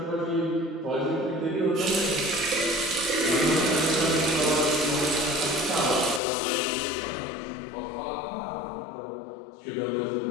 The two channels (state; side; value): drops out; right; at 6.2 s